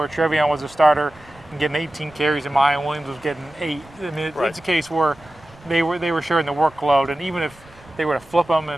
Travion was a starter and getting 18 carries and Mayan Williams was getting 8. I mean, it's a case where they were sharing the workload, and even if they were to flip them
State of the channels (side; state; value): right; noise; rumble, 25 dB below the sound